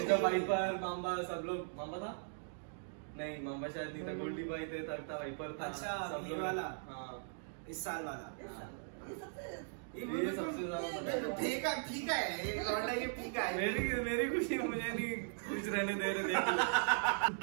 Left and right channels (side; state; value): left; silent; digital silence